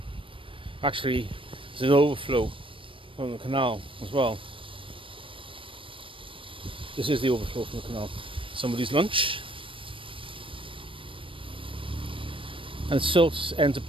Actually, there's an overflow from the canal as well. This is the overflow from the canal. Somebody's lunch. And silt ends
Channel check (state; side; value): late; left; 0.25 ms